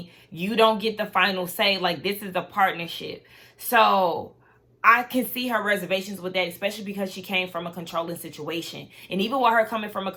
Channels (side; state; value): both; identical; correlation 1.00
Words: You don't get the final say. Like, this is a partnership. So I can see her reservations with that, especially because she came from a controlling situation. And even with her coming from a